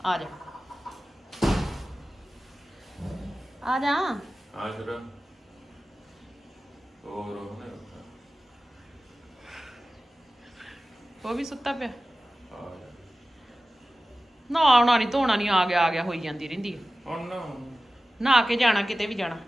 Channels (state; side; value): normal; both; correlation 0.95